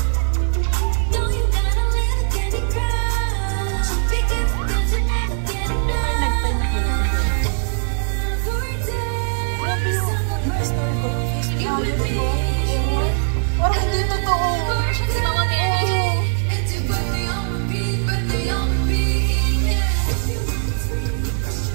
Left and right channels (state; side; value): silent; left; digital silence